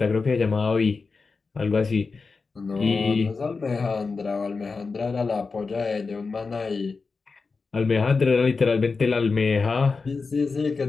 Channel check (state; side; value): quieter; right; 4.4 dB